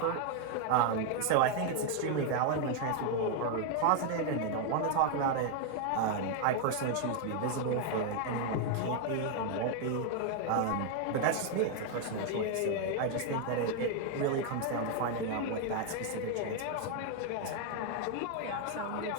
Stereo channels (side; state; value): both; different; correlation 0.00